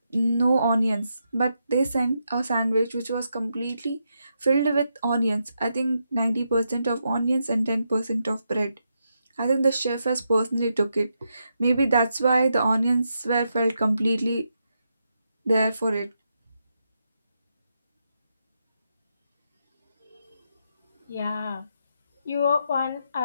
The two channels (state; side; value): inverted; both; correlation -0.83